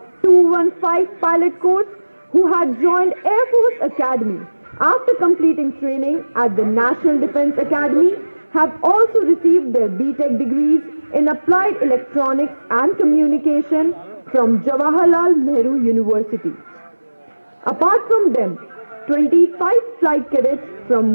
215 pilot course who had joined Air Force Academy after completing training at the National Defense Academy have also received their B.Tech degrees in Applied Electronics and Communication from Jawaharlal Nehru University. Apart from them, 25 flight cadets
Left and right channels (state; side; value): inverted; both; correlation -1.00